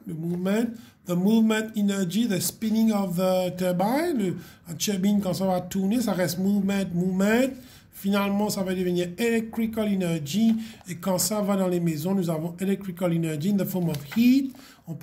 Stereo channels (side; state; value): both; identical; correlation 1.00